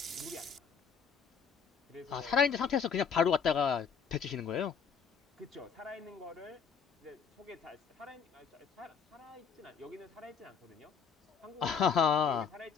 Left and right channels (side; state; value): right; quieter; 6.5 dB